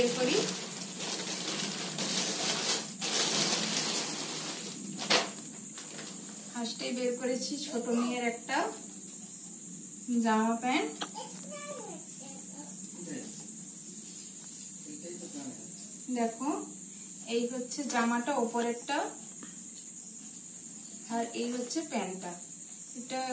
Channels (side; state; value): both; identical; correlation 1.00